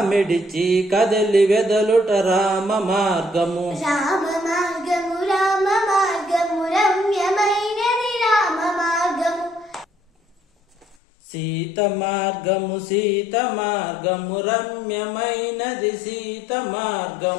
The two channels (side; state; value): right; drops out; at 11.0 s